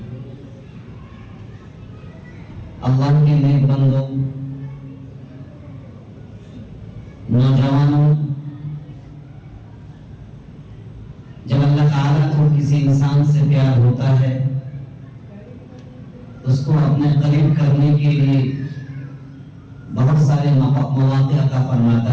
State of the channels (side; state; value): both; identical; correlation 1.00